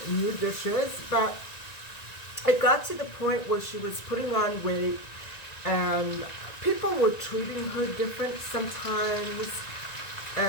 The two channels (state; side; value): late; right; 1.9 ms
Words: new dishes, but it got to the point where she was putting on weight, and people were treating her different sometimes.